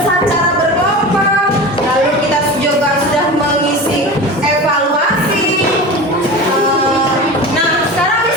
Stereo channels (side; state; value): both; normal; correlation 0.31